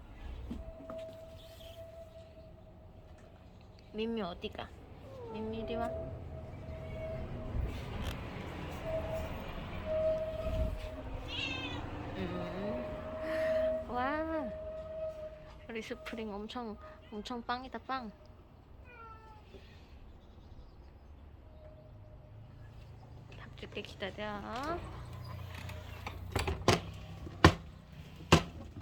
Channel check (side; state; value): both; identical; correlation 1.00